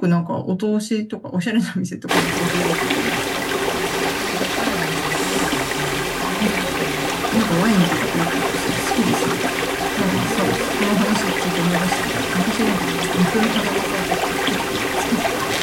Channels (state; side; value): identical; both; correlation 1.00